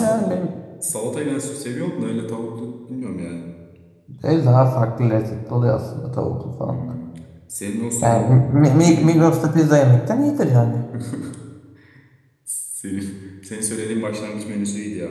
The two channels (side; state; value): both; identical; correlation 1.00